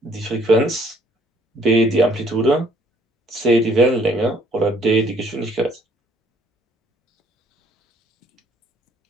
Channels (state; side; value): normal; both; correlation 0.62